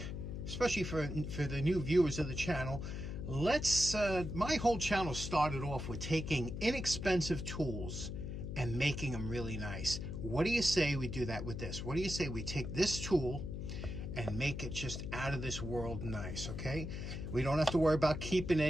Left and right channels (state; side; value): noise; left; hum, 5 dB below the sound